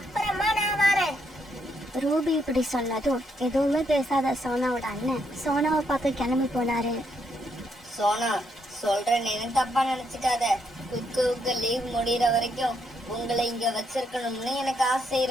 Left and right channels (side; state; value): both; normal; correlation 0.76